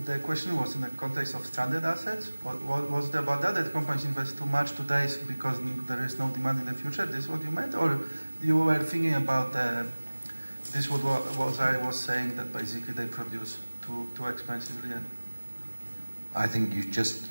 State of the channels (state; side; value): inverted; both; correlation -1.00